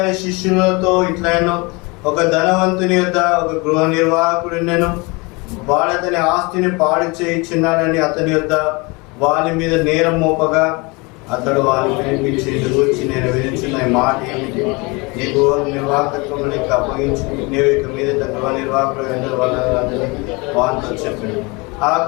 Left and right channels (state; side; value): quieter; right; 27.1 dB